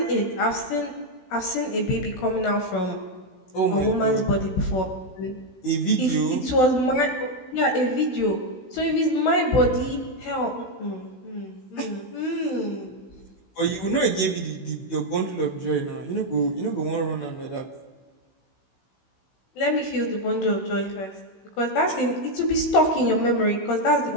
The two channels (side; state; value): right; late; 16 ms